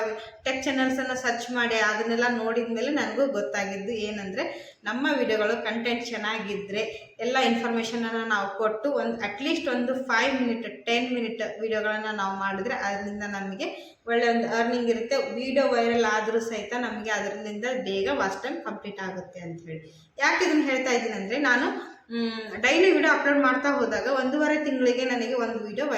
ಟೆಕ್ ಚಾನಲ್ಸನ್ನು ಸರ್ಚ್ ಮಾಡಿ ಅದನ್ನೆಲ್ಲ ನೋಡಿದ ಮೇಲೆ ನನಗೂ ಗೊತ್ತಾಗಿದ್ದು ಏನಂದರೆ, ನಮ್ಮ ವಿಡಿಯೋಗಳು ಕಂಟೆಂಟ್ ಚೆನ್ನಾಗಿದ್ದರೆ ಎಲ್ಲ ಇನ್ಫಾರ್ಮೇಷನನ್ನು ನಾವು ಕೊಟ್ಟು ಅಟ್ಲೀಸ್ಟ್ ಒಂದು 5 ಮಿನಿಟ್ 10 ಮಿನಿಟ್ ವಿಡಿಯೋಗಳನ್ನು ನಾವು ಮಾಡಿದ್ರೆ ಅದರಿಂದ ನಮಗೆ ಒಳ್ಳೆಯ ಒಂದು ಅರ್ನಿಂಗ್ ಇರುತ್ತೆ. ವಿಡಿಯೋ ವೈರಲ್ ಆದರೂ ಸಹಿತ ನಮಗೆ ಅದರಿಂದ ಬೇಗ ವಾಚ್ ಟೈಮ್ ಕಂಪ್ಲೀಟ್ ಆಗುತ್ತೆ ಅಂಥೇಳಿ. ಯಾಕೆ ಇದನ್ನು ಹೇಳ್ತಾ ಇದ್ದೀನಿ ಅಂದರೆ, ನಾನು ಡೈಲಿ ವಿಡಿಯೋ ಅಪ್ಲೋಡ್ ಮಾಡ್ತಾ ಹೋದಾಗ 1.5 ತಿಂಗಳಿಗೆ ನನಗೆ ಒಂದು ವಿಡಿಯೋ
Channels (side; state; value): both; identical; correlation 1.00